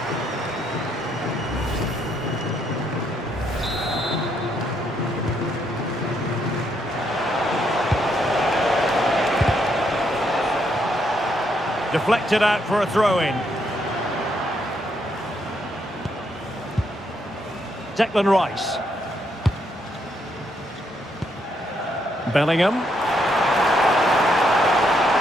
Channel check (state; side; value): normal; both; correlation 0.75